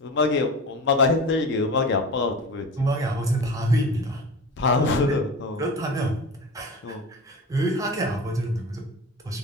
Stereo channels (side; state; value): both; normal; correlation 0.32